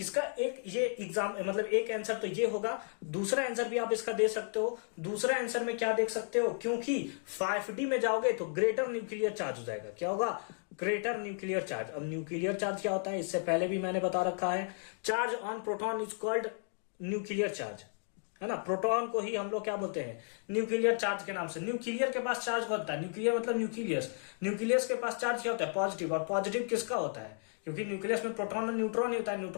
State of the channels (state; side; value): silent; right; 55 dB below the other